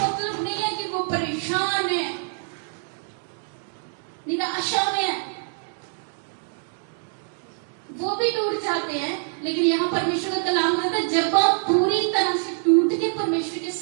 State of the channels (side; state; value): left; silent; digital silence